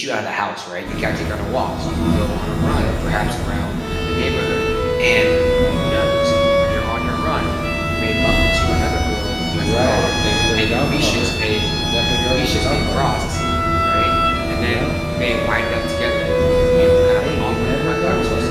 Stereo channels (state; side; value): identical; both; correlation 1.00